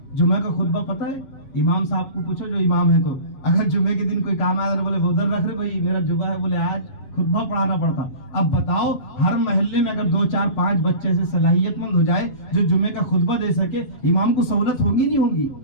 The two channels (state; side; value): late; right; 7.6 ms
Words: جمعہ کا خطبہ پتہ ہے؟ امام صاحب کو پوچھو جو امام ہے، تو اگر جمعے کے دن کوئی کام آیا بولے ادھر رکھ رہے بھائی میرا جمعہ ہے، بولے آج خطبہ پڑھانا پڑتا. اب بتاؤ ہر محلے میں اگر 2 4 5 بچے سے صلاحیت مند ہو جائے جو جمعے کا خطبہ دے سکے، امام کو سہولت ہوگی نہیں ہوگی؟